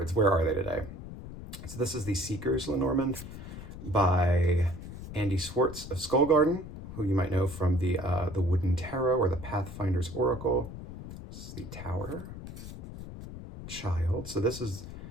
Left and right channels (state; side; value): noise; left; rumble, 11 dB below the sound